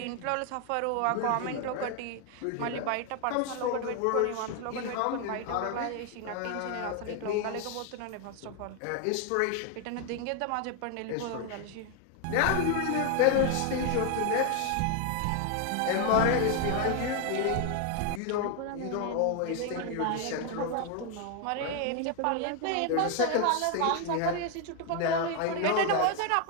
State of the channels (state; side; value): different; both; correlation 0.01